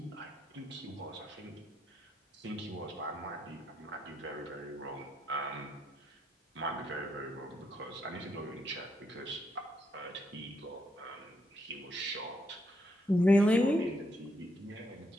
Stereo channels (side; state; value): both; normal; correlation 0.77